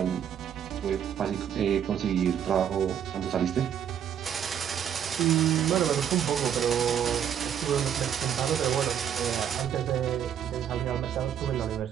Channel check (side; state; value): left; quieter; 9.0 dB